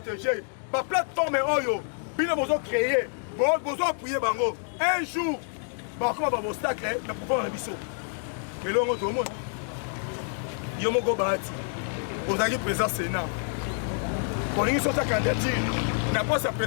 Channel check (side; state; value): right; silent; 60 dB below the other